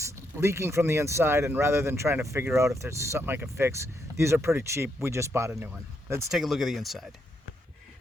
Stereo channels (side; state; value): both; normal; correlation 0.78